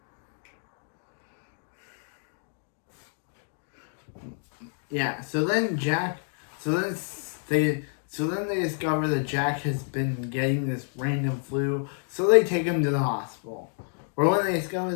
Yeah, so then they discover that Jack has been getting this random flu, so they take him to the hospital. Or when they discover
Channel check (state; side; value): silent; right; 56 dB below the other